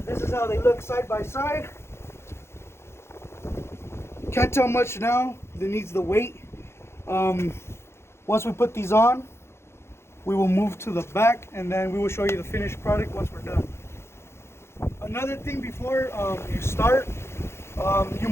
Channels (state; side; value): late; right; 0.12 ms